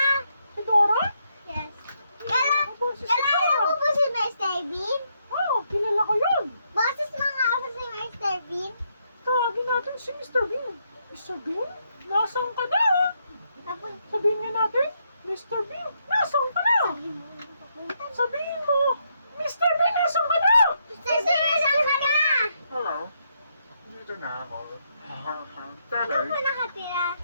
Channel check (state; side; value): inverted; both; correlation -0.77